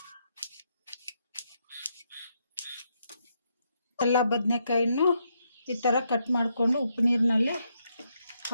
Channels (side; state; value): both; inverted; correlation -0.78